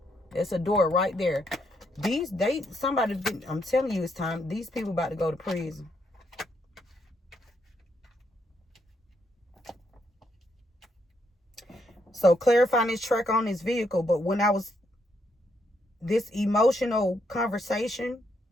it's a door right there. Somebody. I'm telling you, it's time. These people about to go to prison. So clarifying this track on this vehicle. But when I was this emotional conversation,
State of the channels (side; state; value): both; normal; correlation 0.76